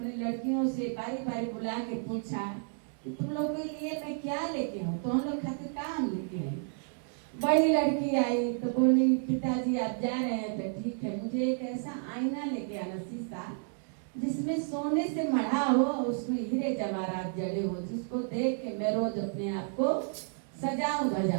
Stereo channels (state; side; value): silent; left; 57 dB below the other